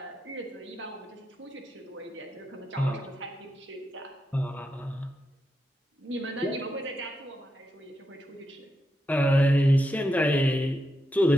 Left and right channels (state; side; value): normal; both; correlation 0.85